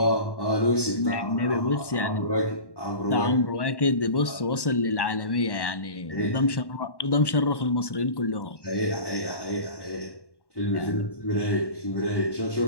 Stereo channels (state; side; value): late; right; 1.1 ms